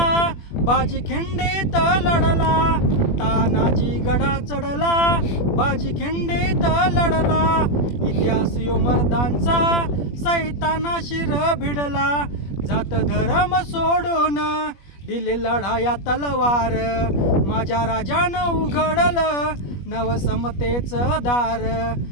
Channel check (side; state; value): right; late; 21 ms